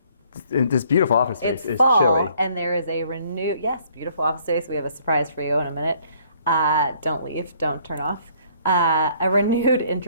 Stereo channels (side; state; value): both; inverted; correlation -0.62